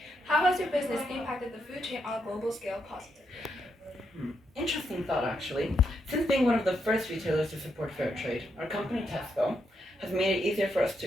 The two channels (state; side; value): normal; both; correlation 0.80